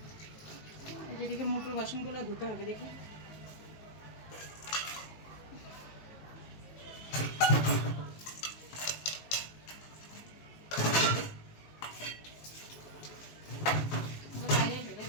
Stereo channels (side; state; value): right; late; 19 ms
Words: যেদিকে মোটর বাসনগুলো ধুতে হবে, দেখি। বাইরে ফেলে